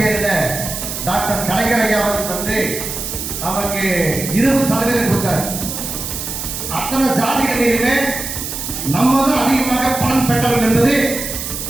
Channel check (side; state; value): right; noise; hiss, 6 dB below the sound